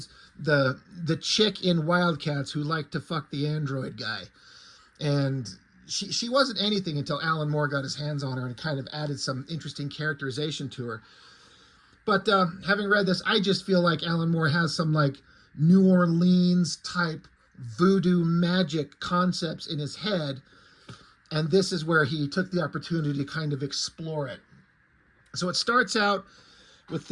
the chick in Wildcats who liked to fuck the android guy? And she wasn't anything until Alan Moore got his hands on her and kind of added some interesting characterization to her. But having read this, I just feel like Alan Moore has some like New Orleans type voodoo magic concepts in his head. And this is where he took the opportunity to kind of explore it. So it starts out with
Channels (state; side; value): identical; both; correlation 1.00